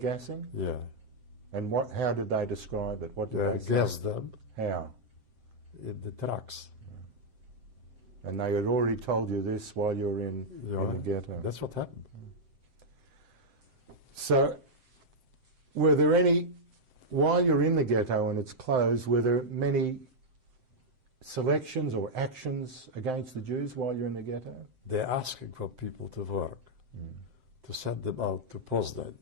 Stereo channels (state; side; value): late; left; 7.7 ms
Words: Yeah. And how did they describe it? What did they say? Gas them How? in the trucks. And they had already told you this while you were in the ghetto. That's what happened. So, were there any, while you're in the ghetto and it's closed, were there many selections or actions against the Jews while you're in the ghetto? They're asking for people to work, to send them out to Poznan.